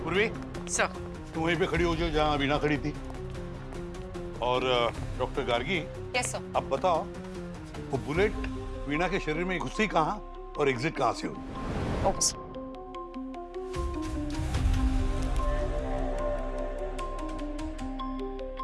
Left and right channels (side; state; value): both; identical; correlation 1.00